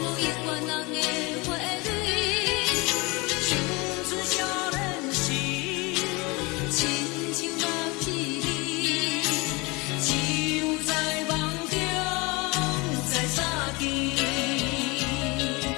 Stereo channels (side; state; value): right; quieter; 25.7 dB